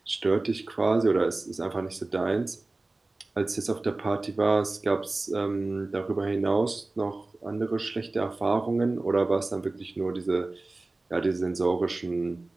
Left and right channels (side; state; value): left; quieter; 3.1 dB